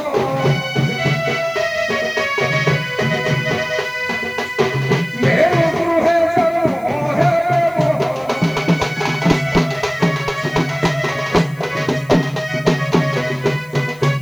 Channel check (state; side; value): noise; left; hiss, 27 dB below the sound